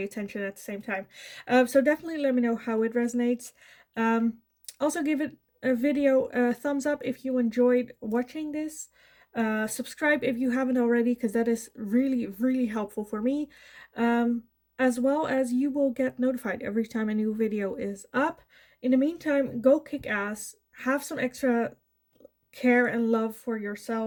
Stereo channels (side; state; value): both; identical; correlation 1.00